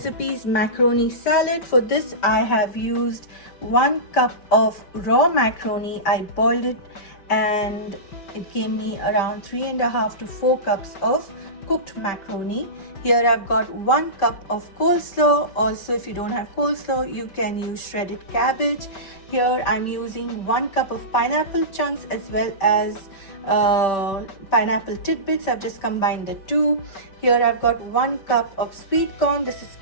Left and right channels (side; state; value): right; late; 5.2 ms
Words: is macaroni salad. For this I have used 1 cup of raw macaroni. I boiled it and it gave me around 3.5 to 4 cups of cooked macaroni. Here I've got 1 cup of coleslaw. Also, if you don't have coleslaw, you can use shredded cabbage. Here I'm using 1 cup of pineapple chunks as well as pineapple tidbits. I've just combined the two. Here I've got 1 cup of sweet corn. This is